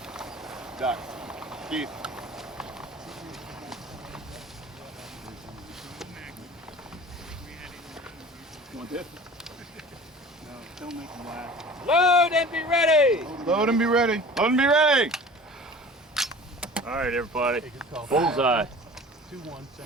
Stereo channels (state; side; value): normal; both; correlation 0.42